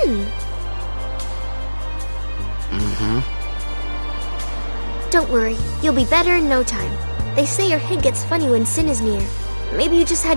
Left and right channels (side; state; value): both; inverted; correlation -1.00